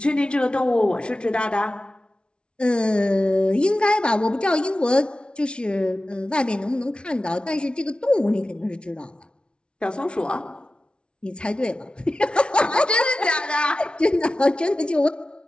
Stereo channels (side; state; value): right; late; 0.057 ms